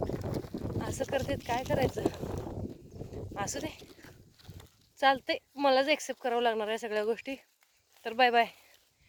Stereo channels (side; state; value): both; identical; correlation 1.00